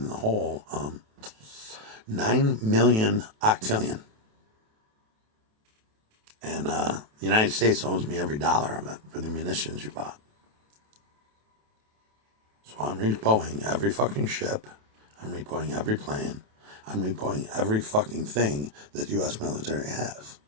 the whole 9 million octillion. And the United States owes me every dollar of it for the munitions you bought. So I'm repoing every fucking ship. I'm repoing every plane. I'm repoing every fucking thing that the U.S. military has.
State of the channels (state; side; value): late; left; 28 ms